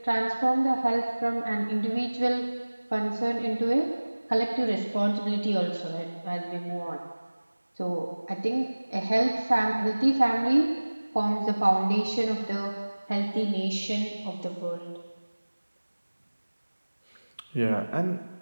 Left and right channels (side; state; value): both; inverted; correlation -1.00